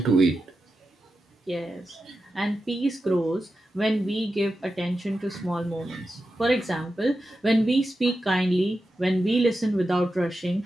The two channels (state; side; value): normal; both; correlation 0.90